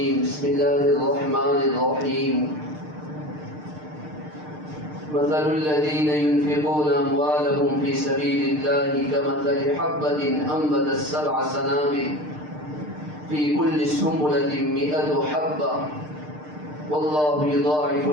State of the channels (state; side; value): late; left; 6.6 ms